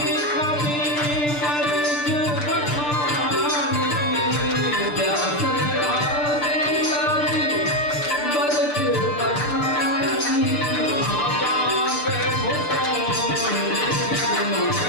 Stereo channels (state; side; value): late; right; 6.8 ms